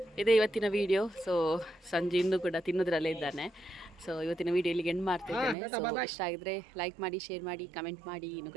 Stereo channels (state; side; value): drops out; left; at 5.6 s